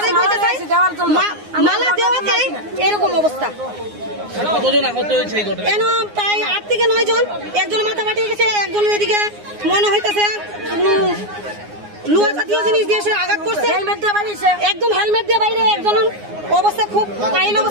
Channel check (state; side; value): late; left; 9.6 ms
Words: কইতে চাই। মালা দেওয়াতে এরকম অবস্থা। কতজন আহত হয়েছে এই ঘটনায়? কেন প্রায় 8 থেকে 9 জন, একজন মাথা ফাটিয়ে গেছে, একজনের এদিকে মনে হইতেছে লোহা জাতীয় জিনিস দিয়ে সে আঘাত করছে, একদম হেলমেট দিয়ে বাইরে, একজন অবস্থা খুব কাইল